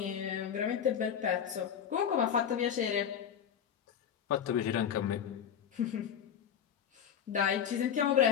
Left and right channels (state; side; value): quieter; right; 8.6 dB